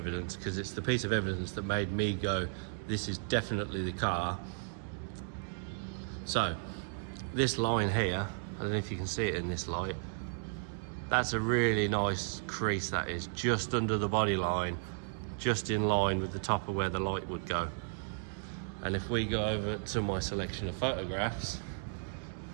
because it's the piece of evidence that made me go, this is definitely the car. So, this line here, I don't know if you can see it in this light, that's a really nice crease, that is, just under the body line, just in line with the top of where the light would go. And if we go over to my selection of photographs,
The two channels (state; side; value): silent; left; digital silence